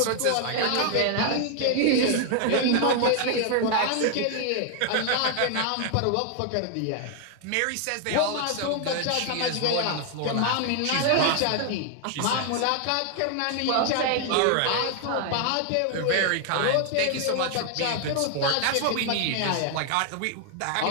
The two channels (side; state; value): both; different; correlation 0.00